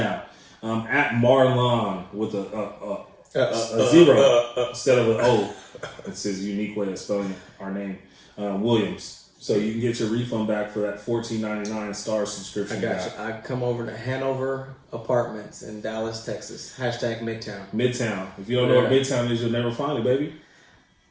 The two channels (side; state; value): both; identical; correlation 1.00